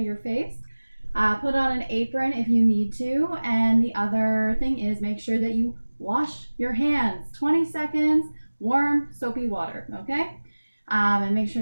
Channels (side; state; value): both; inverted; correlation -1.00